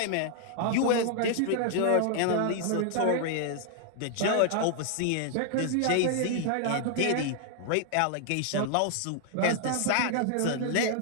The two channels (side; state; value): both; different; correlation 0.00